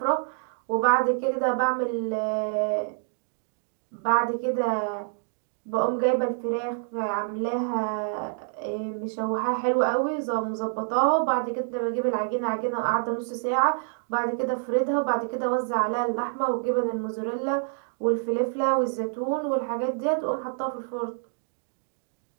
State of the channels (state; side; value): silent; left; digital silence